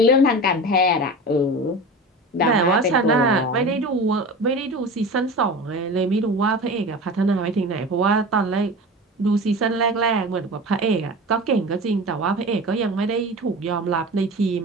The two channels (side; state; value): both; normal; correlation 0.32